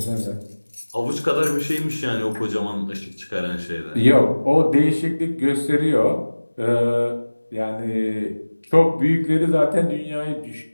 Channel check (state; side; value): inverted; both; correlation -1.00